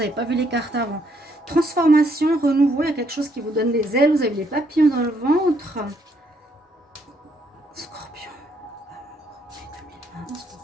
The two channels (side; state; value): both; normal; correlation 0.71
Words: pas vu les cartes avant. Transformation, renouveau, il y a quelque chose qui vous donne des ailes. Vous avez les papillons dans le ventre. Scorpion.